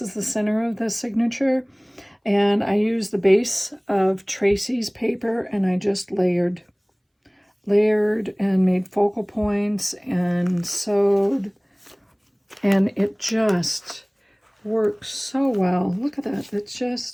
the center of the signature. And I used the base of Tracie's paper, and I just layered and made focal points and sewed. And it just works so well. Look at that. It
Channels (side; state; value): both; identical; correlation 1.00